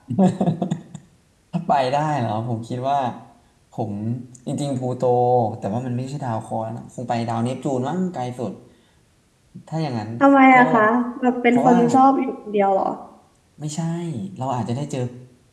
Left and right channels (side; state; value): both; identical; correlation 1.00